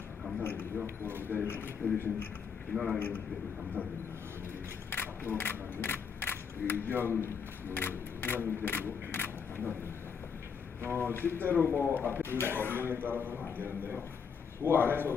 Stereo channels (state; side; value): quieter; right; 6.3 dB